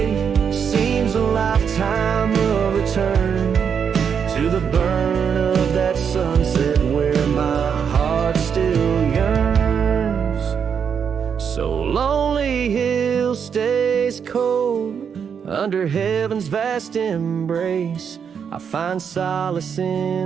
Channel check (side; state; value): left; quieter; 7.1 dB